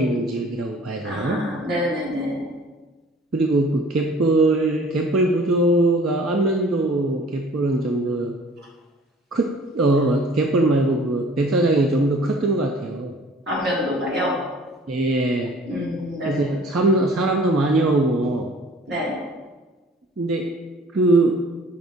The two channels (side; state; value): both; normal; correlation 0.51